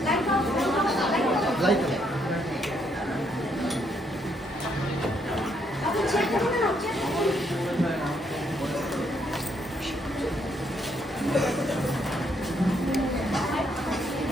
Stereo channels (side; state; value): both; normal; correlation 0.73